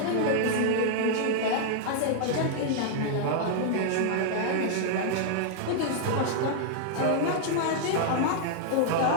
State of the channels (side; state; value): both; different; correlation -0.01